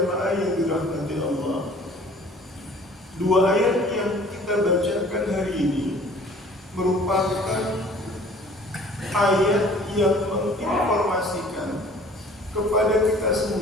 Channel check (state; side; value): normal; both; correlation 0.51